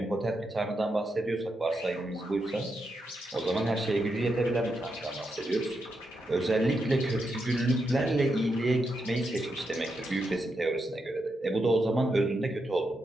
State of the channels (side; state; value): both; normal; correlation 0.84